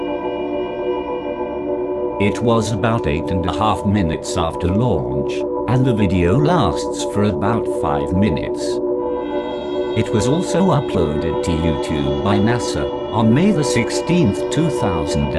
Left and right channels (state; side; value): identical; both; correlation 1.00